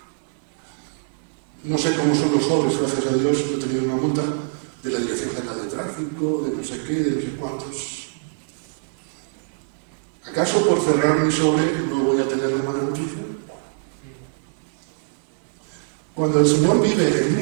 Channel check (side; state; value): left; silent; digital silence